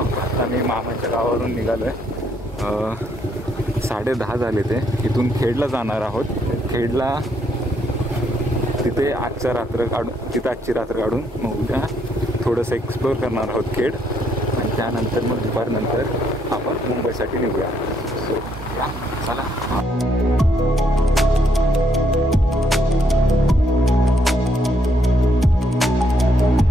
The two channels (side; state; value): both; normal; correlation 0.72